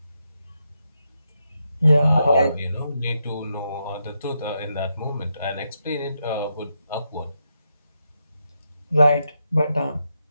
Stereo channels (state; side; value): inverted; both; correlation -0.83